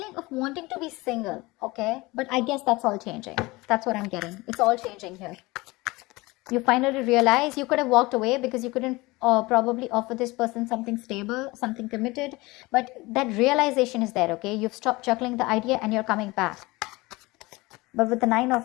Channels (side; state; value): right; quieter; 22.2 dB